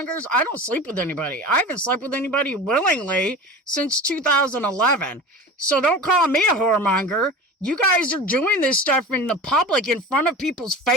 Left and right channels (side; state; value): both; normal; correlation 0.34